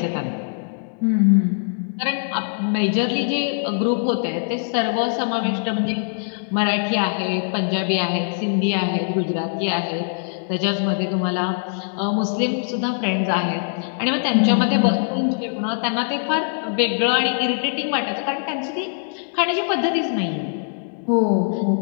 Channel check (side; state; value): right; silent; digital silence